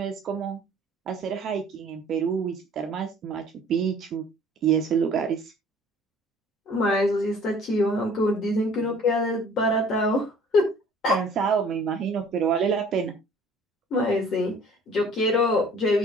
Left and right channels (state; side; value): normal; both; correlation 0.51